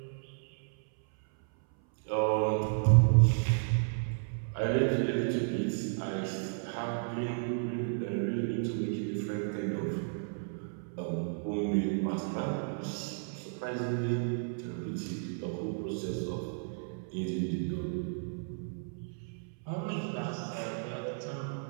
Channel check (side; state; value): left; silent; 56 dB below the other